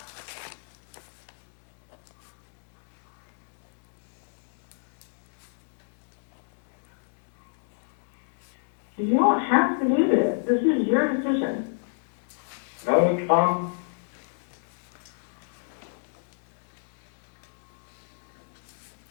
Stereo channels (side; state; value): right; silent; digital silence